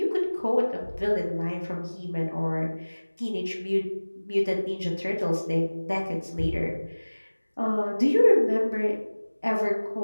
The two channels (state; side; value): inverted; both; correlation -1.00